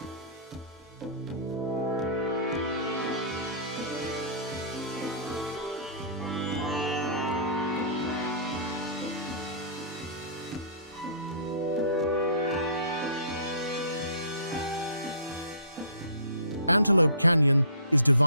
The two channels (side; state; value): both; inverted; correlation -0.45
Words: Antelope Canyon is